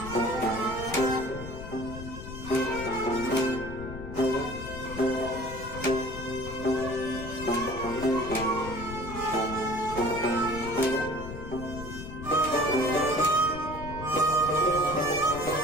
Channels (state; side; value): noise; left; rumble, 10 dB below the sound